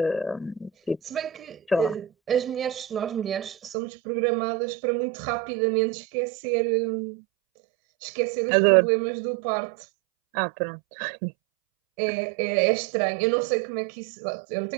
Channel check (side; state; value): left; drops out; at 3.8 s